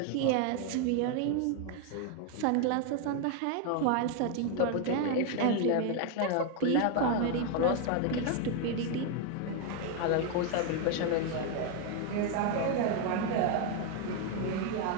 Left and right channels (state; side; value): different; both; correlation 0.01